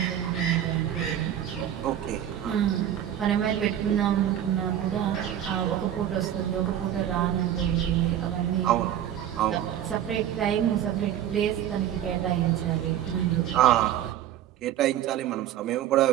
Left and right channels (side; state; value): left; quieter; 10.9 dB